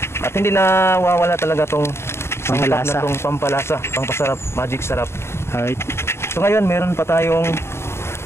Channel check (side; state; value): right; late; 0.12 ms